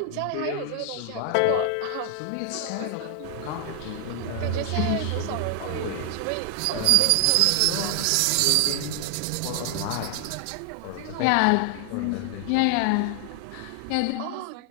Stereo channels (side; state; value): both; different; correlation 0.00